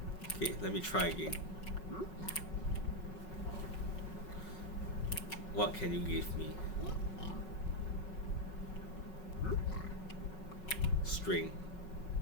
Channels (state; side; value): late; right; 5.4 ms